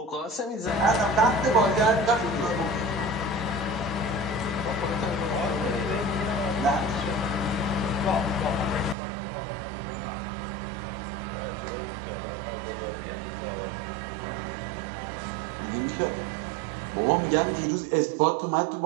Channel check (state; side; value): drops out; left; at 9.0 s